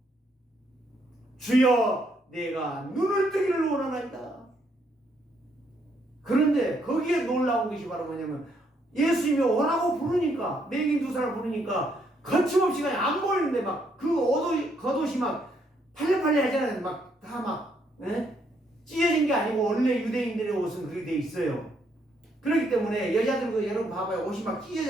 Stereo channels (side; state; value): both; normal; correlation 0.73